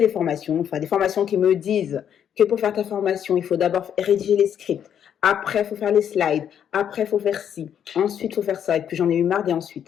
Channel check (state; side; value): quieter; right; 9.0 dB